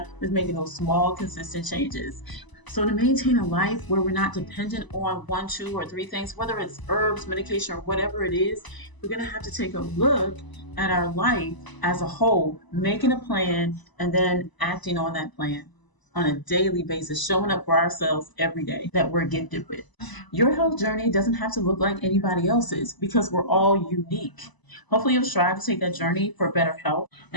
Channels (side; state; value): right; late; 1.0 ms